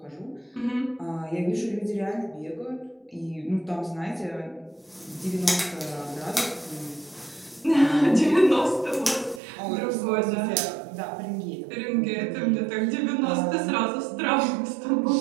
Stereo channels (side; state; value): left; drops out; at 9.4 s